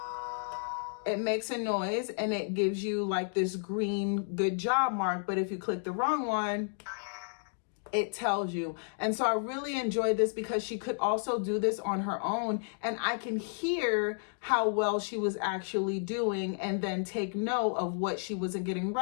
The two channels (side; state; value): right; silent; digital silence